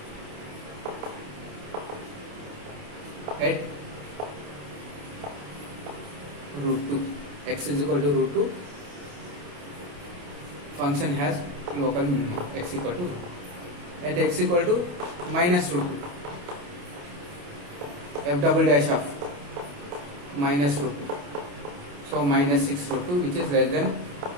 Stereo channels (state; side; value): late; left; 28 ms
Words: at root 2. X is equal to root 2. Function has local minimum, x equal to root 2. At x equal to minus root 2, f double dash of minus root 2. So minus 6 root 2, which is less than